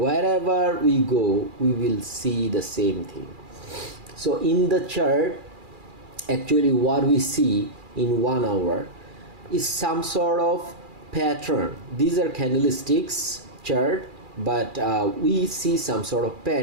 we go, we will see the same thing. So in the chart, actually what we see in 1 hour is some sort of pattern. These are candlesticks chart, but we see some sort of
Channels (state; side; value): late; left; 2.4 ms